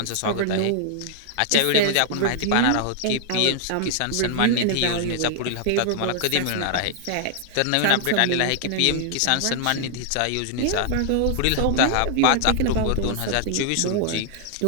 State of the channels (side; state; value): both; different; correlation 0.00